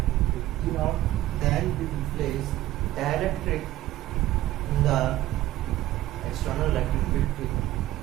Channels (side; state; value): left; quieter; 15.1 dB